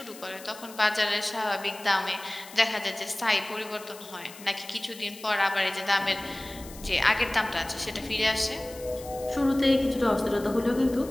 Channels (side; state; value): left; noise; hiss, 17 dB below the sound